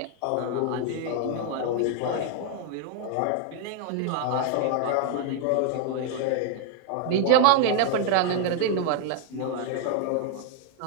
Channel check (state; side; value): different; both; correlation 0.00